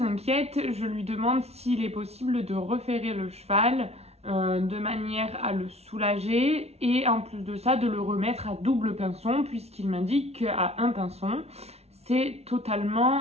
inquiète, je lui demande s'il est possible de referrer le cheval de manière à le soulager et en plus de ça de le remettre à double pinçon puisqu'il m'indique qu'à un pinçon, c'est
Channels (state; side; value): late; left; 0.31 ms